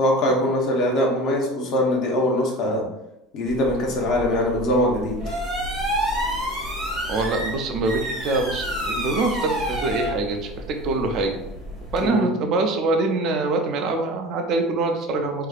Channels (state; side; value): normal; both; correlation 0.37